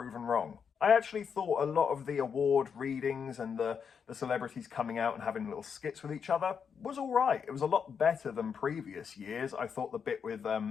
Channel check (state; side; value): quieter; right; 6.7 dB